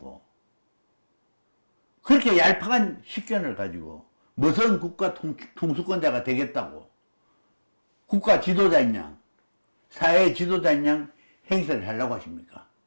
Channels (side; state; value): both; inverted; correlation -1.00